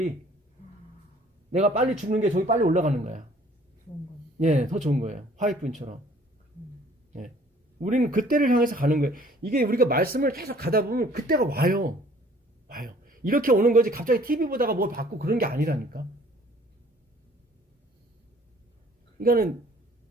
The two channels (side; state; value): both; normal; correlation 0.56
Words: 내가 빨리 죽는 게 저기 빨리 올라가는 거야. 좋은 건. 예, 더 좋은 거예요. 화이트분처럼. 예. 우리는 그때를 향해서 가는 거예요. 이게 우리가 말씀을 계속 가다 보면 그때가 와요. 와요. 이렇게 오는 거지 갑자기 TV 보다가 뭘 받고 그런 게 아니라니까. 그러니까는